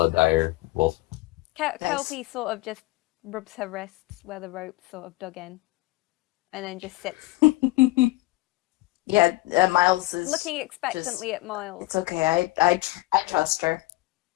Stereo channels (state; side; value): quieter; right; 19.9 dB